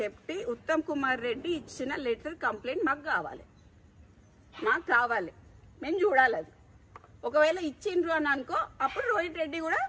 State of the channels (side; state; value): both; identical; correlation 1.00